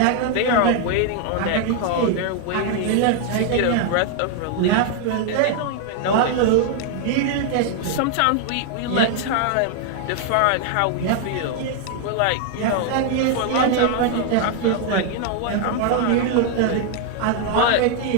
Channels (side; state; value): both; different; correlation 0.00